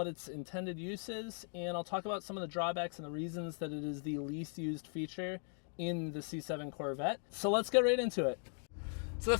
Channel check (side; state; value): right; silent; 52 dB below the other